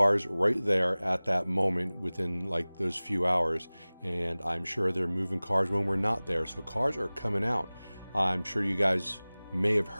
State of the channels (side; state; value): both; inverted; correlation -0.99